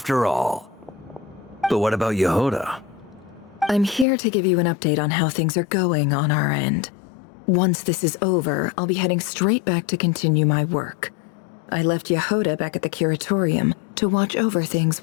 all. But what about Yehuda? I'm here to give you an update on how things are going on our end. Once this is over, I'll be heading straight back to continue my work. I left Yehuda back at the curatorium to watch over things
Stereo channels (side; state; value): right; drops out; at 4.0 s